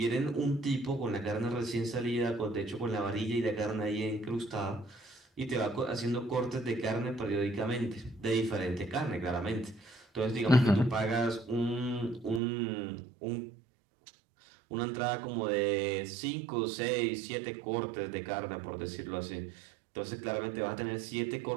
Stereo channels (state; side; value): drops out; left; at 12.4 s